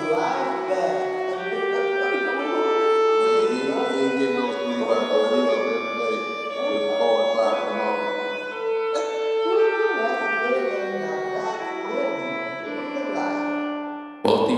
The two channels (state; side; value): identical; both; correlation 1.00